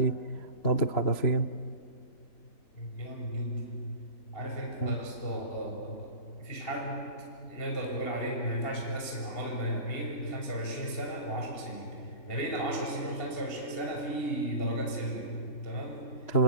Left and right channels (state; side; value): late; right; 2.8 ms